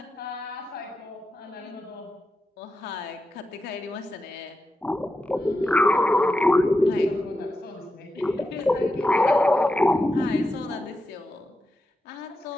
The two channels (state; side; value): normal; both; correlation 0.89